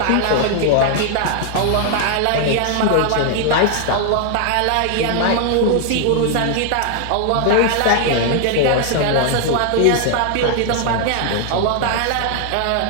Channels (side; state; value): both; different; correlation 0.00